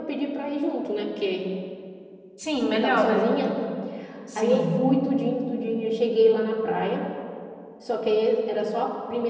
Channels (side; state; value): both; identical; correlation 1.00